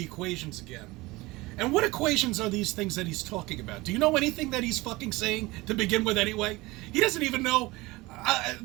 equations again. And what equations are these things that he's talking about? Do you know anything that he's fucking saying to begin with anyway? He doesn't even know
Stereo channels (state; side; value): quieter; left; 21.3 dB